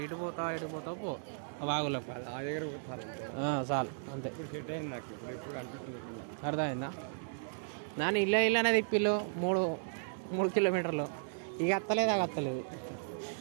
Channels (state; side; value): silent; left; 54 dB below the other